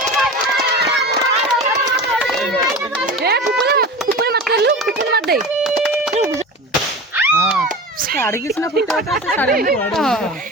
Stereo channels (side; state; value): both; normal; correlation 0.31